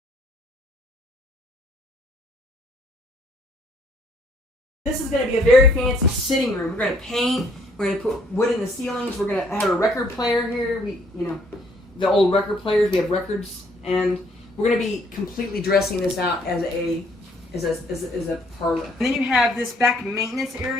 This is going to be a very fancy sitting room. We're going to paint. We're going to put wood in the ceilings. We're going to have a record player here. The old record players. We have records, and we're going to be completely dressing this out as a parlor. And then you have this back maintenance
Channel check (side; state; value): both; normal; correlation 0.65